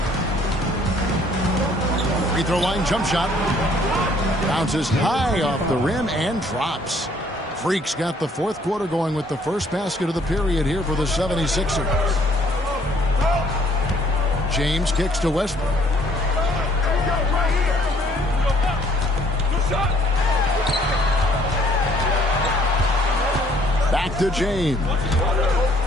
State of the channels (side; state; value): both; normal; correlation 0.62